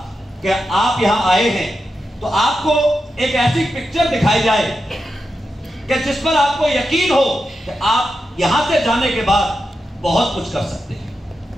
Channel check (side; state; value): both; normal; correlation 0.88